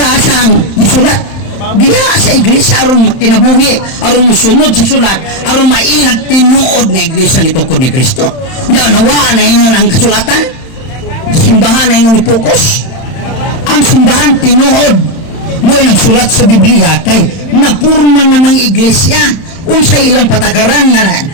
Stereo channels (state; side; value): late; right; 31 ms